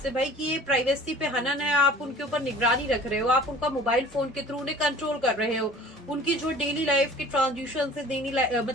है भाई कि ये प्राइवेसी पे हनन है। आप उनके ऊपर निगरानी रख रहे हो, आप उनका मोबाइल फोन के थ्रू उन्हें कंट्रोल कर रहे हो, उनकी जो डेली लाइफ की ट्रांजेक्शन से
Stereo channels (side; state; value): both; normal; correlation 0.46